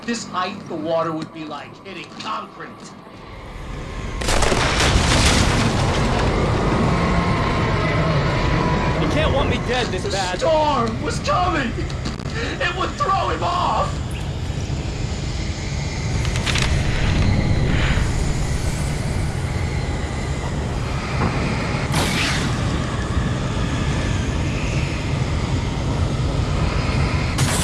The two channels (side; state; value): both; identical; correlation 1.00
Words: this height, the water would be like hitting concrete. You can't want me dead this The bad. storm was coming! It would throw him off!